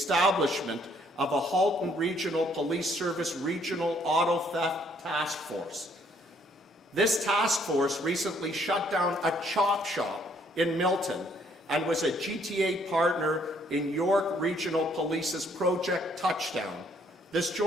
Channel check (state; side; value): normal; both; correlation 0.66